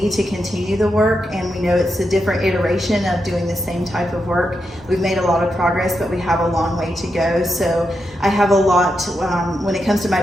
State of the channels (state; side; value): normal; both; correlation 0.85